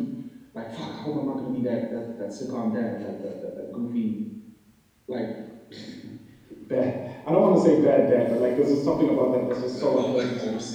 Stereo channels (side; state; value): both; identical; correlation 1.00